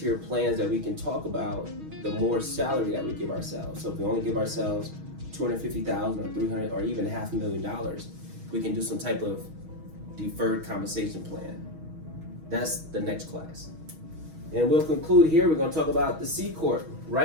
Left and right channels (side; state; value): left; late; 6.3 ms